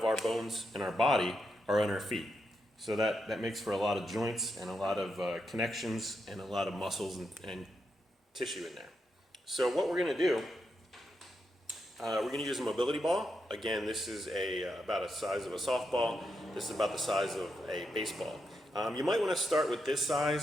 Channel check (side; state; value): both; normal; correlation 0.84